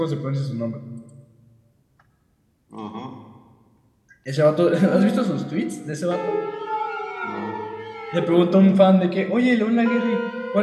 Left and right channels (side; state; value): both; identical; correlation 1.00